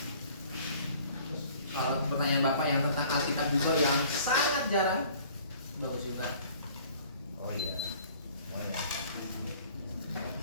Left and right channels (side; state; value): both; inverted; correlation -0.53